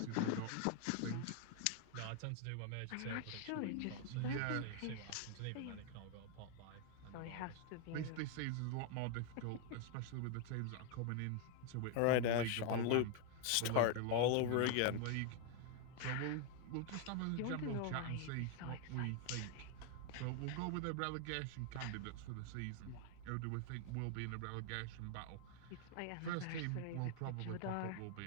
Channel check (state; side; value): different; both; correlation 0.00